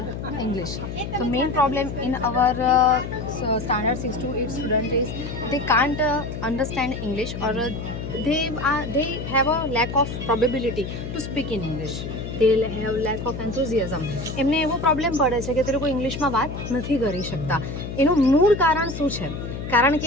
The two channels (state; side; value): noise; left; hum, 7 dB below the sound